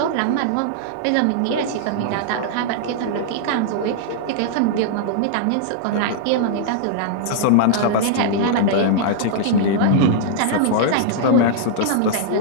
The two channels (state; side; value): different; both; correlation -0.01